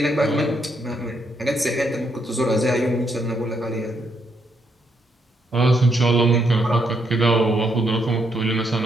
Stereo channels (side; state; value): both; normal; correlation 0.76